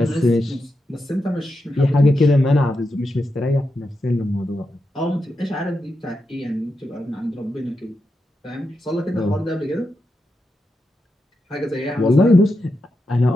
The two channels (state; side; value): normal; both; correlation 0.87